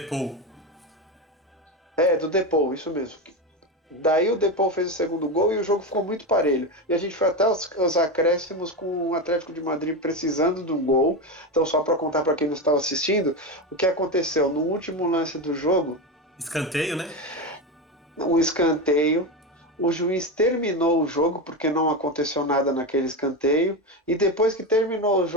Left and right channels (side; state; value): both; normal; correlation 0.16